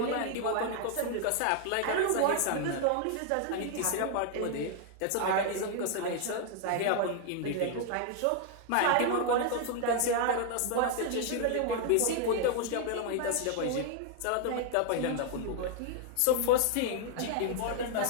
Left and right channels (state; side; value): different; both; correlation 0.00